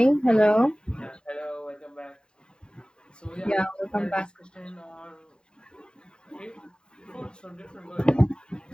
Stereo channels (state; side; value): late; right; 0.048 ms